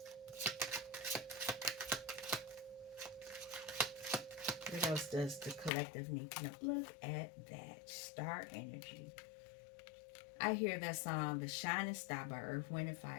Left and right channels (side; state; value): right; drops out; at 5.7 s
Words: What else does the collective need to know? Look at that. Star energy. I hear that song, The Shining Star by Earth, Wind, and